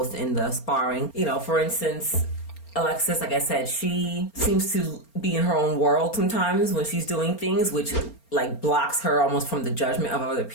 in the sparring. You know, for instance, Alexis, like I said, she seems to be in her own world sometimes when she's doing things, which like blocks her almost from the judgment of other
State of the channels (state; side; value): late; right; 4.3 ms